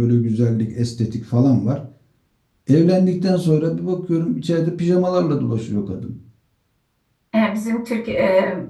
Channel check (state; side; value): identical; both; correlation 1.00